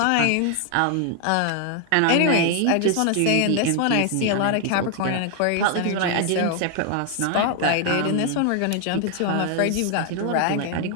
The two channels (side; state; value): both; different; correlation 0.00